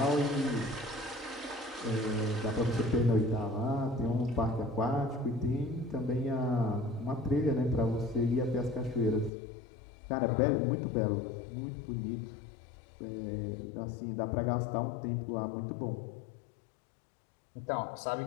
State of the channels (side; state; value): right; drops out; at 9.3 s